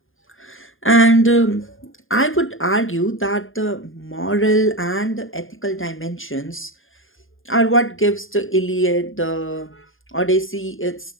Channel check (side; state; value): right; late; 0.59 ms